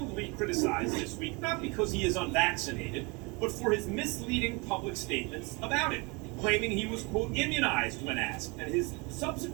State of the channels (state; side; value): quieter; left; 28.4 dB